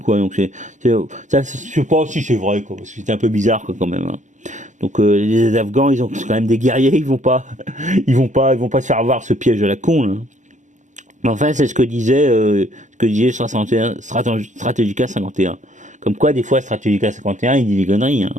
Donc ça, je sais pas si c'est vrai, quoi, parce que c'est un peu bizarre, quoi, quand même. Hein. Donc les Afghans, ils ont quand même des guerriers, ils vont pas se faire avoir ce piège à la con, là. Mais enfin, c'est ce que disait Strategica 51. Comme quoi, des fois, Strategica 51, il dit des conneries. Hein.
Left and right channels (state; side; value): late; left; 0.36 ms